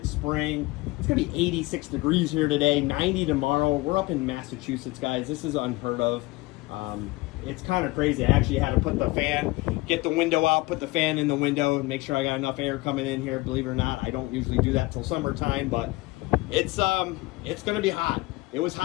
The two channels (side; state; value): right; quieter; 21.2 dB